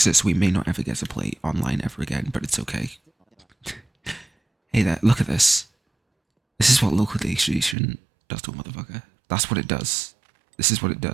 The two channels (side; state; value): left; drops out; at 7.8 s